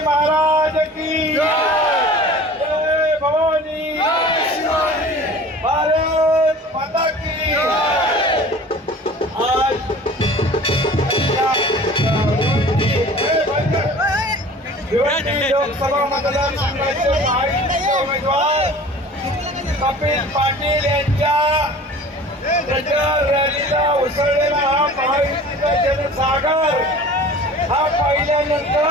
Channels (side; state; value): both; normal; correlation 0.43